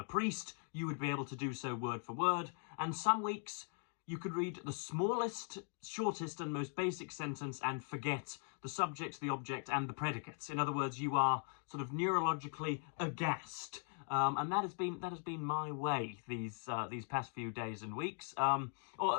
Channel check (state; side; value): silent; right; 51 dB below the other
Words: priest, you would be able to do so word for word. And some weeks you could read the smallest, shortest and most basic sentence and forget the subject, the object and the predicates. In other words, you are sort of neurologically aghast. And that has been my way these past few days and weeks,